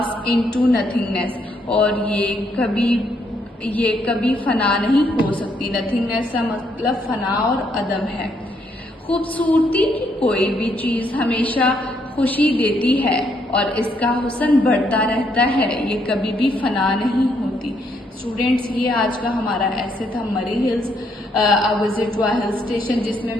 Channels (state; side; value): normal; both; correlation 0.73